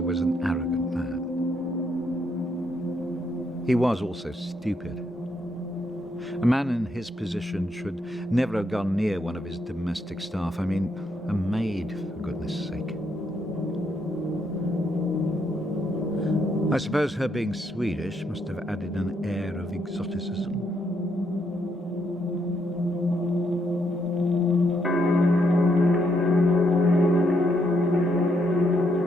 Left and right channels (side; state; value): both; normal; correlation 0.76